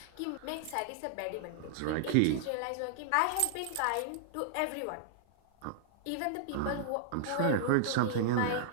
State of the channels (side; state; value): both; different; correlation -0.01